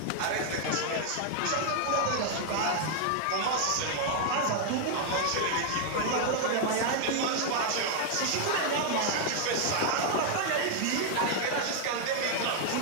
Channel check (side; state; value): both; different; correlation 0.00